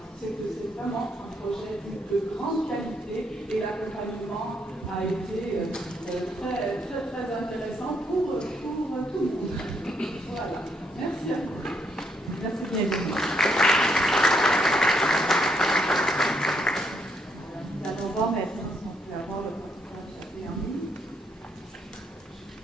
c'est que c'est vraiment un projet de grande qualité et l'accompagnement a été très, très, très intéressant pour tout le monde. Voilà. Merci à vous. Merci bien. Nous allons voir maintenant si on peut avoir le professeur Chabé en ligne.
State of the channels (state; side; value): normal; both; correlation 0.73